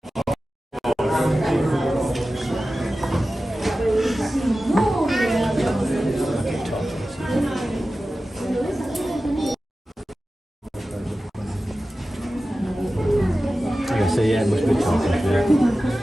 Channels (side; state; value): both; normal; correlation 0.95